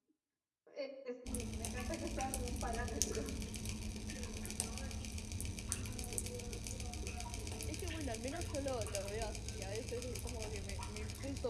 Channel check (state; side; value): identical; both; correlation 1.00